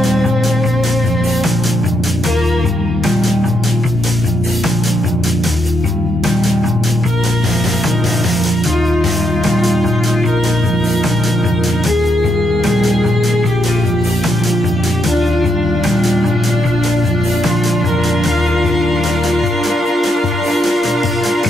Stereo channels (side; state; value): both; normal; correlation 0.79